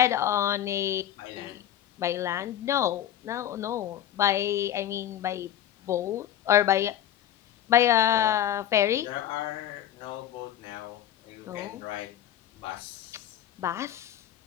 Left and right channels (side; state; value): right; quieter; 11.3 dB